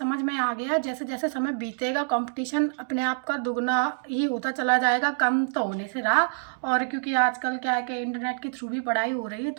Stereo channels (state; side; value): silent; left; digital silence